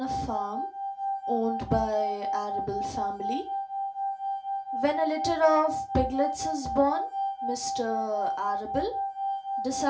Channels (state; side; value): identical; both; correlation 1.00